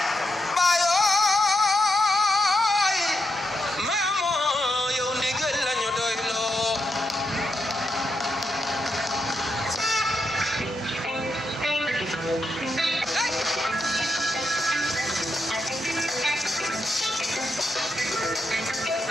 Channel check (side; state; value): both; normal; correlation 0.83